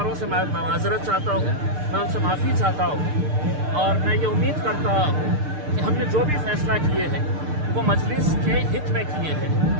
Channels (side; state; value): left; late; 6.7 ms